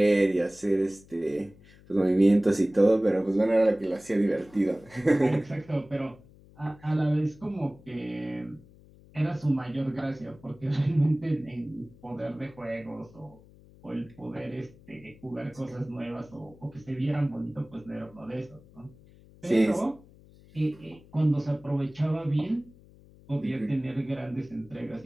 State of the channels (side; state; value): left; noise; hum, 24 dB below the sound